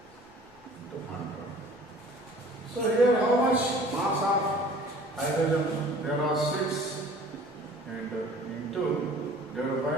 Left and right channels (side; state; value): left; noise; rumble, 29 dB below the sound